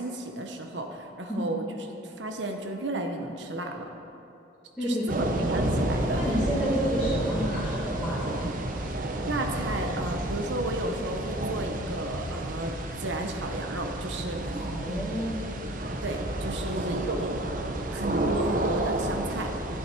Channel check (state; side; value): normal; both; correlation 0.48